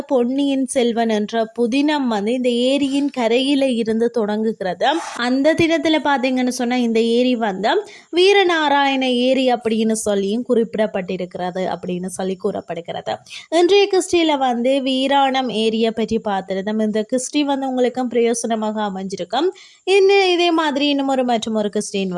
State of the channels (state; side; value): identical; both; correlation 1.00